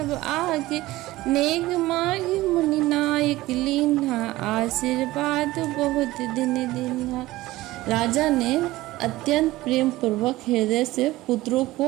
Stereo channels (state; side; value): quieter; left; 17.8 dB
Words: आगे। नेग मांगी मुनि नायक लीन्हा, आशीर्वाद बहुत दिन दिन्हा। राजा ने अत्यंत प्रेम पूर्वक हृदय से पुत्रों